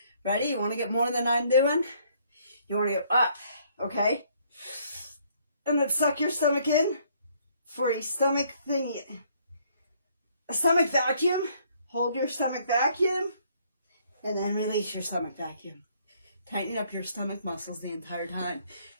ready? You want to get more than I'm doing? You want to go up, okay? And then suck your stomach in for a stomach thingy. A stomach vacuum. Hold your stomach vacuum. And then release your stomach vacuum. Tighten up your stomach muscles the entire time.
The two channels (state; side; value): inverted; both; correlation -0.65